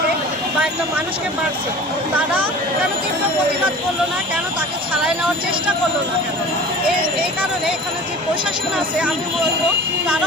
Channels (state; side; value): normal; both; correlation 0.40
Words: বা একটা মানুষকে মারছে, তারা কেন তীব্র প্রতিবাদ করলো না, কেন তাকে ছাড়াই নেওয়ার চেষ্টা করলো না কেন? এই কারণে এখানে যে প্রশাসন আছে আমি বলবো